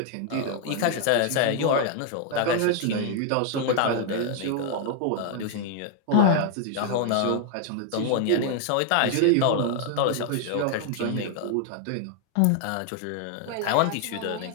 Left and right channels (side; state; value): both; different; correlation 0.00